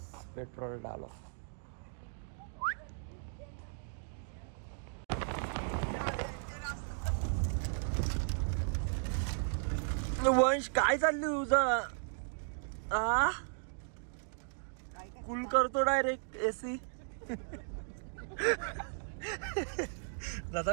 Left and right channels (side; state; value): left; silent; digital silence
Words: पेट्रोल डालो. वंश काय चाललं तुझं? कूल करतो डायरेक्ट एसी.